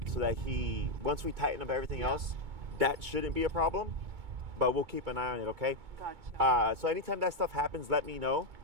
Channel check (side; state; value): left; late; 2.2 ms